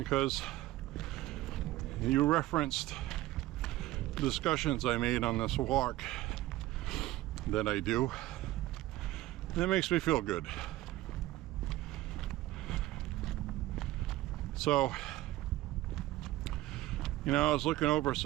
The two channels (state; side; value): quieter; left; 16.3 dB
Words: you referenced discussions I made on this walk that I do. That makes me feel good. So, you know, I was looking over